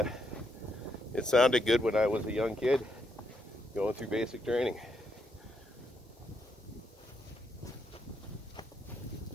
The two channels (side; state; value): both; normal; correlation 0.78